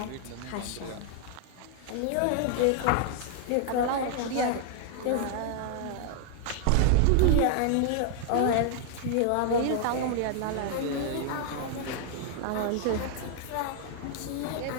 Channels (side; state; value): both; different; correlation 0.00